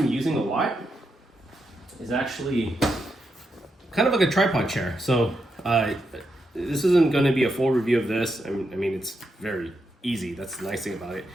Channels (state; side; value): normal; both; correlation 0.83